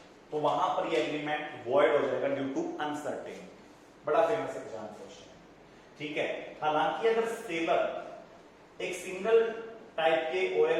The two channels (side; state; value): both; identical; correlation 1.00